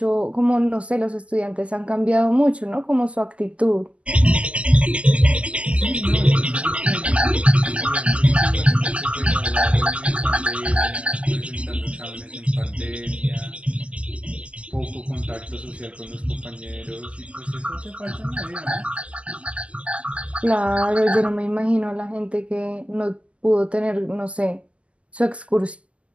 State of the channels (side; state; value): left; late; 0.059 ms